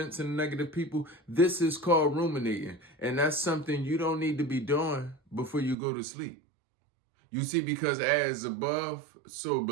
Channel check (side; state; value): left; drops out; at 5.8 s